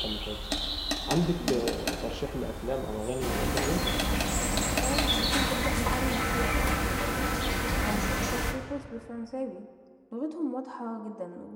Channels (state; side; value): identical; both; correlation 1.00